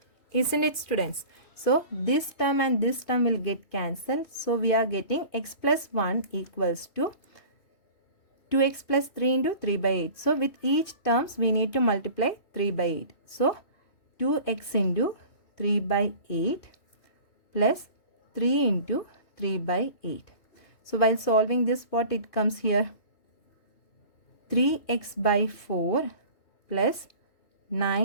Isn't it, students? So this term and this term will get cancelled. So we are getting x plus 1 equals to 2x plus 3 into 3 by 8. So with each terms we need to multiply 3 by 8. So 2x into 3 by 8 plus 3 into 3 by 8. So while solving this, what it comes here? 3x by 4 plus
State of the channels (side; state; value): right; late; 2.5 ms